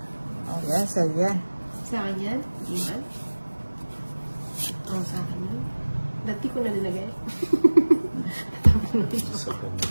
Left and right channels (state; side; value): inverted; both; correlation -1.00